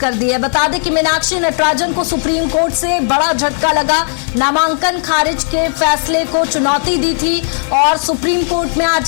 दी है। बता दें कि मीनाक्षी नटराजन को सुप्रीम कोर्ट से बड़ा झटका लगा। नामांकन खारिज के फैसले को चुनौती दी थी और सुप्रीम कोर्ट में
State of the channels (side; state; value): right; silent; digital silence